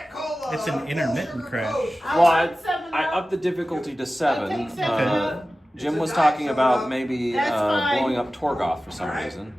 Cola. It's an intermittent crash. Well, I want 7-Up. upped the difficulty to 7. I'll take 7-Up. Jim was talking about maybe That's fine. blowing up Torgoth for some reason,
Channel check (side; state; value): both; normal; correlation 0.95